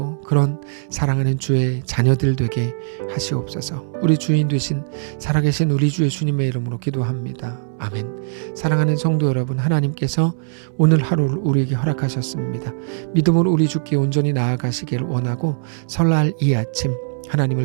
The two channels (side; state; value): left; silent; 66 dB below the other